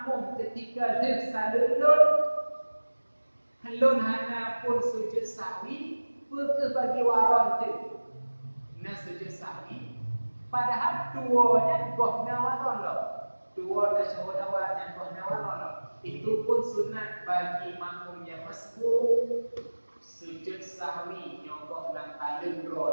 ketika tersalulun helun hana pun sujud sahwi, ke bagi waran tu na sujud sahwi, padahal duanya gohna waran lah, dua tasyahud awal dan gohna waran lah. Itu pun sunat bagi makmum yang masbuk sujud sahwi nyogoh dan talun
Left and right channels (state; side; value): inverted; both; correlation -1.00